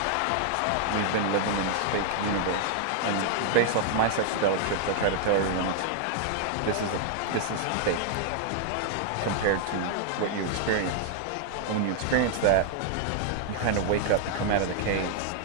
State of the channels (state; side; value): different; both; correlation 0.00